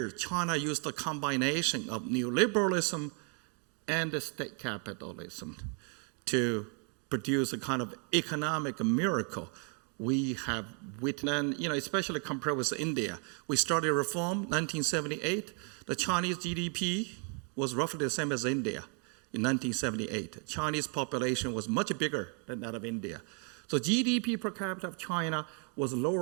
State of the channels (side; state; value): left; quieter; 39.1 dB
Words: China used a combination of neoliberalism and state capitalism to produce a kind of economic miracle we have witnessed, especially compared with India. We started reform 1978. The Chinese GDP was roughly the same as India in 1978. Chinese population was much bigger than that of India. So GDP per capita of China was